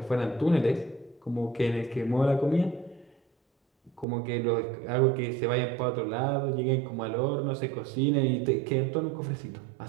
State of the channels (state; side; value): drops out; left; at 4.0 s